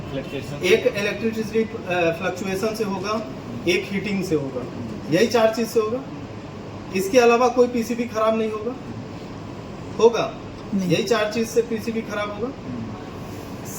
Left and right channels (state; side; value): identical; both; correlation 1.00